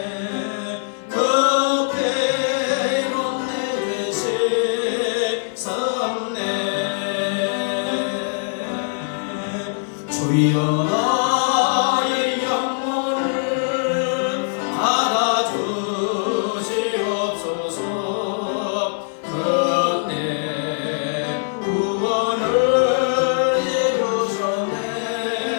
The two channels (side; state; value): right; silent; digital silence